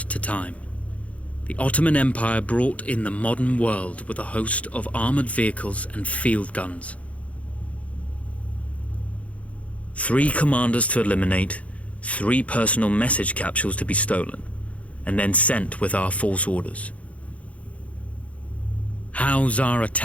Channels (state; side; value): late; right; 0.065 ms